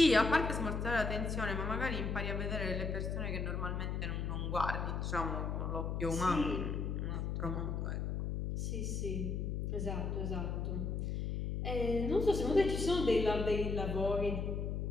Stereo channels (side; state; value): left; noise; hum, 1 dB below the sound